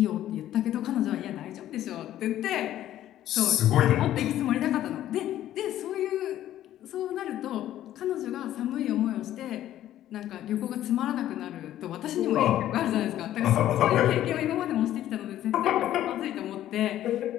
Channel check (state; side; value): quieter; right; 12.7 dB